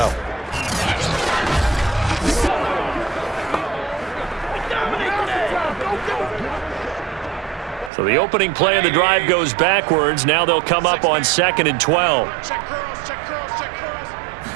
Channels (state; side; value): drops out; left; at 7.9 s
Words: So the opening play of the drive goes backwards. Now they'll come up on 2nd and 12.